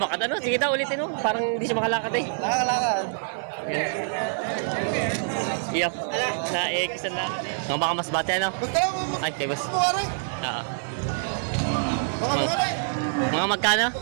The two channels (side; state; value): left; silent; 55 dB below the other